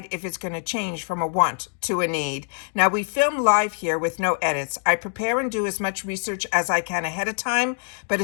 if it's going to change from a want to a need. Now we film live here with no edits. I prepare and do as much research as I can ahead of time, but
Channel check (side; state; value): right; silent; 62 dB below the other